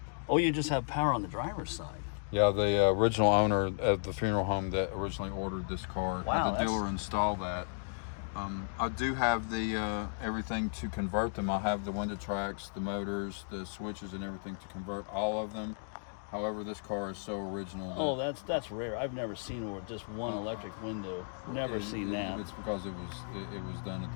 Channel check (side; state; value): right; silent; digital silence